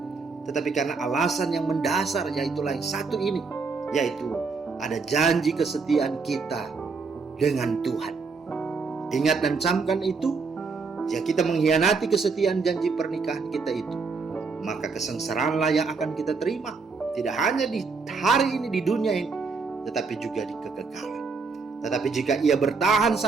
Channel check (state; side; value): quieter; left; 4.7 dB